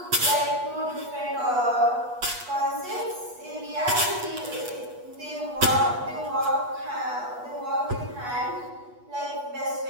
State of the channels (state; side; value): late; left; 8.2 ms